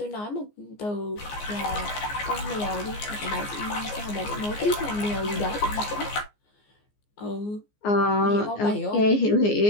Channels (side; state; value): right; late; 14 ms